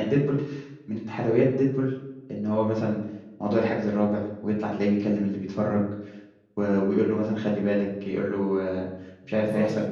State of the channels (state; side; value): identical; both; correlation 1.00